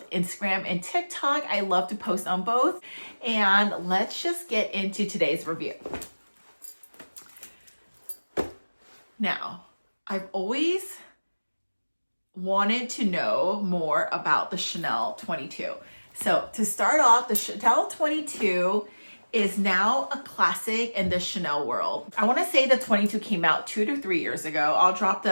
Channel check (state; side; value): inverted; both; correlation -1.00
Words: Instagram and TikTok, I love to post on both. And let's just get into today's review. Now, I've always wanted to know more about the Chanel 22. So to start off, the Chanel 22 is now a classic in the Chanel world. I want to say the 22 came out 2 to 3 years ago. I'll drop